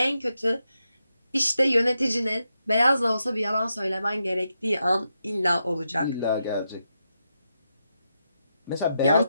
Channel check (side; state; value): both; inverted; correlation -0.85